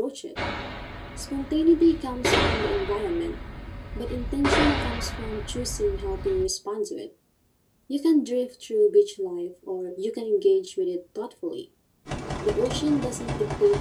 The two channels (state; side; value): identical; both; correlation 1.00